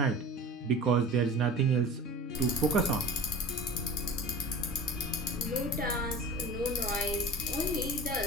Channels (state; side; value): normal; both; correlation 0.36